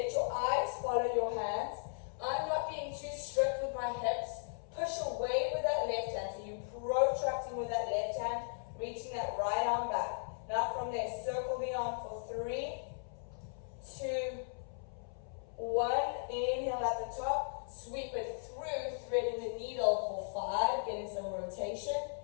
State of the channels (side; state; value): right; silent; 53 dB below the other